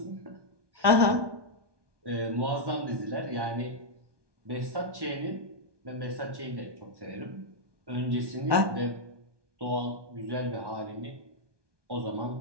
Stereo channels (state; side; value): late; left; 1.2 ms